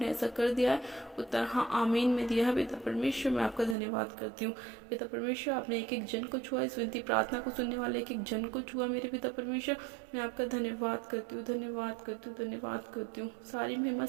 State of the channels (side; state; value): left; drops out; at 3.8 s